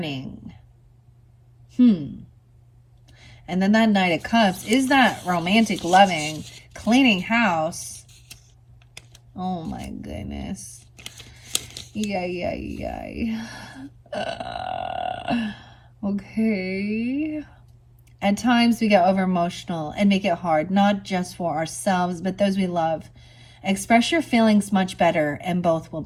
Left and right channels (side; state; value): both; identical; correlation 1.00